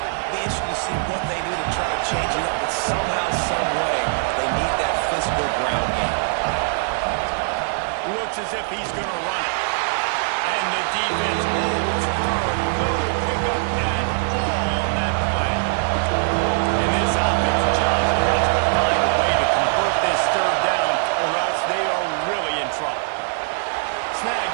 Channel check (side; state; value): left; silent; 58 dB below the other